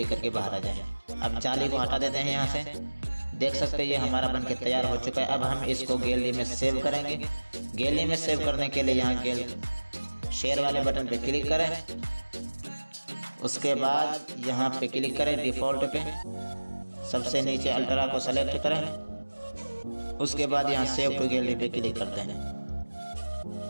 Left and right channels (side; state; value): both; inverted; correlation -1.00